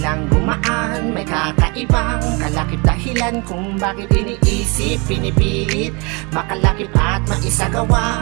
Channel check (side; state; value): left; quieter; 29.6 dB